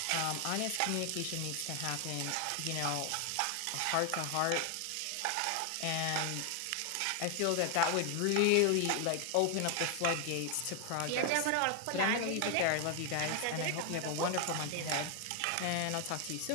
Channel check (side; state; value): both; different; correlation 0.00